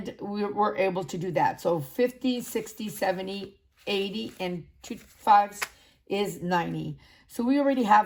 We're able to do that. So 50, 60, 70, 80, and 2 5s is 90. So we already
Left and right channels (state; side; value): identical; both; correlation 1.00